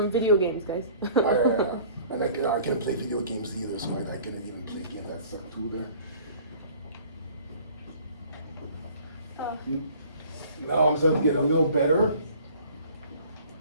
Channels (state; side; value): inverted; both; correlation -0.50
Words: video games, guys. And I can't play video games either, so I couldn't even play games. I suck too there. Now I'm starting to get a little better.